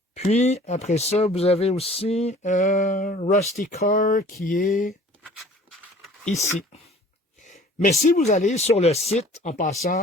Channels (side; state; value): both; normal; correlation 0.49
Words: Puis, après ça, vous avez aussi Rusty Car qui est ici. Mais si vous allez sur le site, en